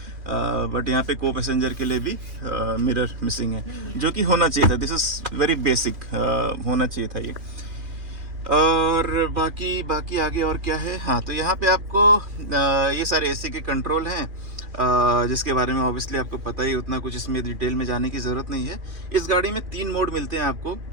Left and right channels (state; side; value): late; left; 2.4 ms